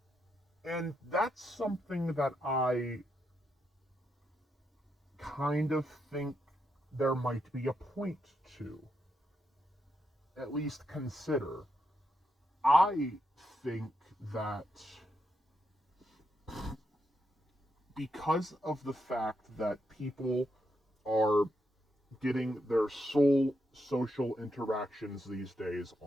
And that's something that I kind of think there might be a point to, at least consider. I think that because of the fact that people are getting their sole social interactions these days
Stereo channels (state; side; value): normal; both; correlation 0.82